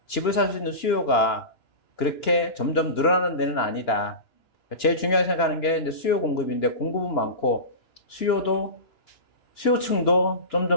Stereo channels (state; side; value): late; right; 2.9 ms